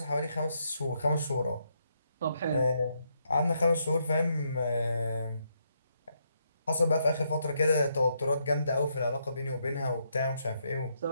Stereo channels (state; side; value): inverted; both; correlation -0.77